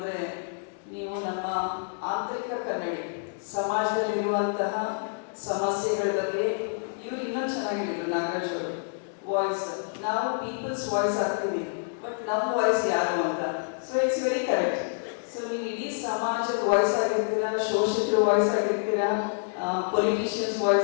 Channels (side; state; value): right; silent; digital silence